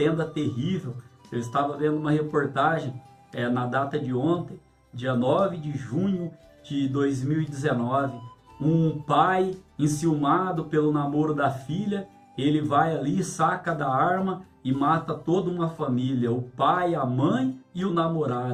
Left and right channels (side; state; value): both; identical; correlation 1.00